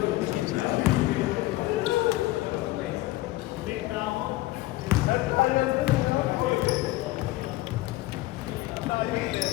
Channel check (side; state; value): right; quieter; 18.1 dB